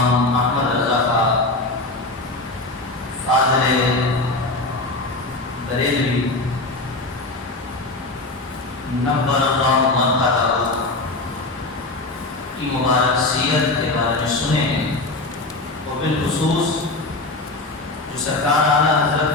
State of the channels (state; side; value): quieter; right; 3.0 dB